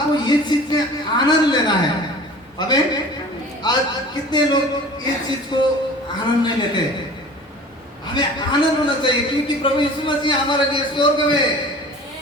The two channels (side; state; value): both; normal; correlation 0.43